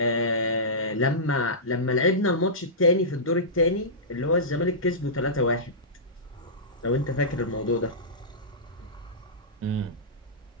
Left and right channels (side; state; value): both; normal; correlation -0.17